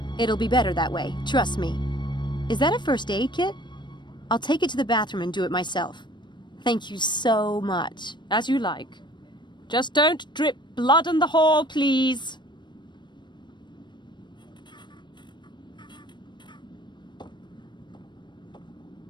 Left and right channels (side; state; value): right; late; 0.22 ms